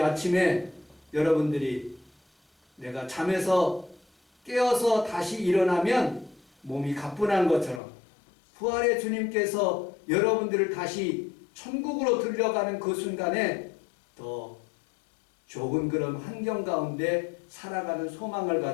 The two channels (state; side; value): drops out; right; at 7.8 s